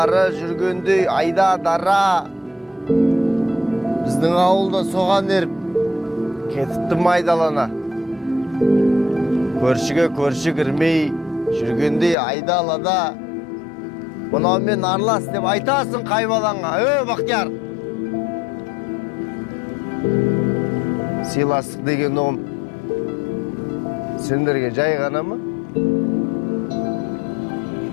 жүргендей айда дара. Біздің ауылда соған еріп, кетіпті майдалана. Көршіге көрші кірмей, жүргендей айда алада. Мұнаумен арлас деп айтасың қайбаланға, Бақтияр. Сыйластық деген оғым сендерге жай ғана ма?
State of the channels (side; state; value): right; drops out; at 12.2 s